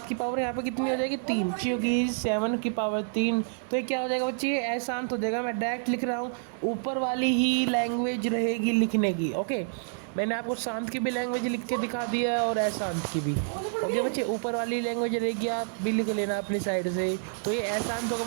की पावर यहाँ पे कितनी हो जाएगी 3, क्योंकि 7 की पावर 3, तो ये क्या हो जाएगा बच्चे, ये अशांत हो जाएगा। मैं डायरेक्ट लिख रहा हूँ, ऊपर वाली ही लैंग्वेज रहेगी लिखने की, ओके। मैंने आपको शांत की भी लैंग्वेज लिख के दिखा दी है और अशांत की भी, ओके बच्चे। ऊपर वाली लैंग्वेज रहेगी, आप भी लिख लेना अपनी साइड से। तो ये अशांत होगा,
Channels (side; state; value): left; silent; digital silence